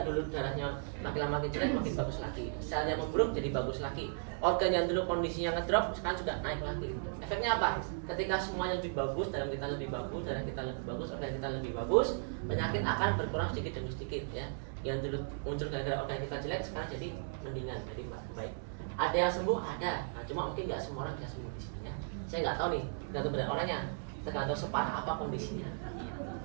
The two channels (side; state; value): left; silent; digital silence